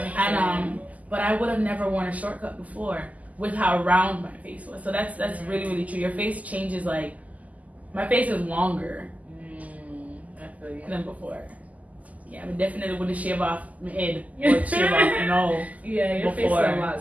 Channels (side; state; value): left; late; 0.075 ms